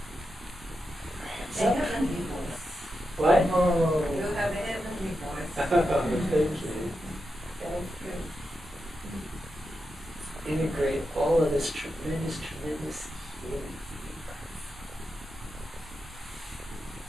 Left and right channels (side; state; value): both; normal; correlation 0.88